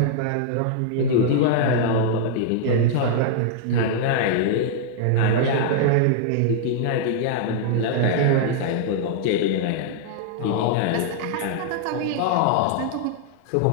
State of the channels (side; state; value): both; different; correlation -0.01